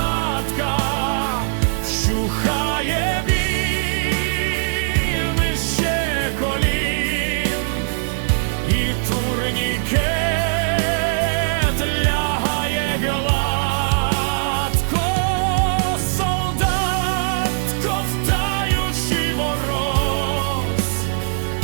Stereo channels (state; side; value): silent; left; 61 dB below the other